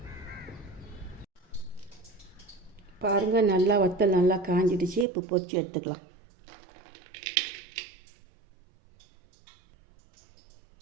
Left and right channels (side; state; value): left; drops out; at 5.1 s